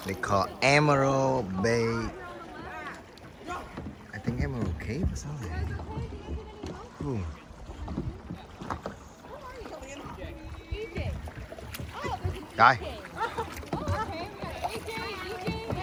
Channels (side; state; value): both; identical; correlation 1.00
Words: They call Emerald Bay. I think Emerald Cave or something. Ooh. Rồi.